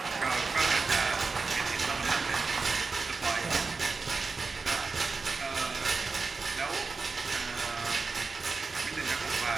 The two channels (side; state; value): left; quieter; 4.3 dB